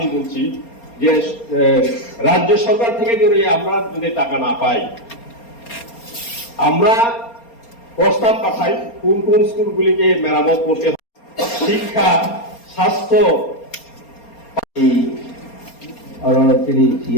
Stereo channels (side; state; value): right; late; 4.3 ms